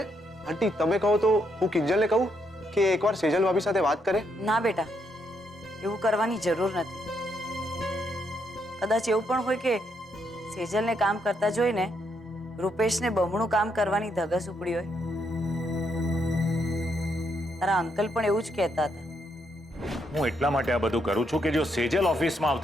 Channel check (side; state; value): both; normal; correlation 0.77